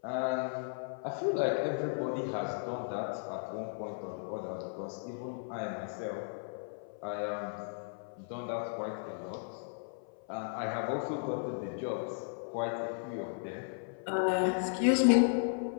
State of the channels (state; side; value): silent; right; 54 dB below the other